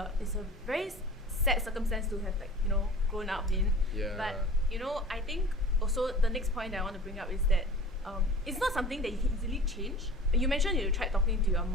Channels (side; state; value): both; normal; correlation 0.41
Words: very sad circumstance to have like, you know, grown up in. Yeah. But you know, I think also the next point that I want to bring up is that it's not something that you can easily change. You mentioned you tried talking to your